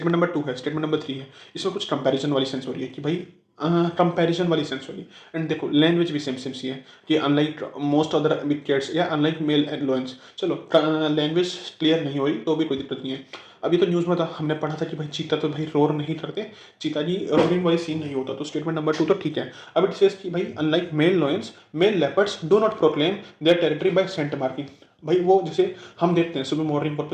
number 2 है, statement number 3 है, इसमें कुछ कंपैरिजन वाली सेंस हो रही है कि भाई कंपैरिजन वाली सेंस हो रही है। एंड देखो लैंग्वेज भी सेम सेम सी है कि unlike most other big cats या अनलाइक मेल एंड लायंस। चलो लैंग्वेज क्लियर नहीं हो रही तो भी कोई दिक्कत नहीं है। अभी तो न्यूज़ में था, हमने पढ़ा था कि भाई चीता तो भाई रोर नहीं करते, चीता जी रोरिंग वाली सीन नहीं होता, तो स्टेटमेंट नंबर 2 तो ठीक है। अब इट सेज कि भाई unlike male lions male leopards do not proclaim their territory by scent marking. भाई वो जैसे हम देखते हैं सुबह मॉर्निंग वॉक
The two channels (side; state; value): both; identical; correlation 1.00